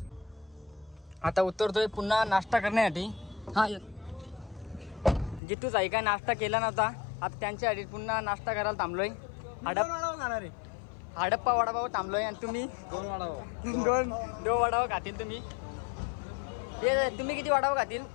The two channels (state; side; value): drops out; right; at 5.4 s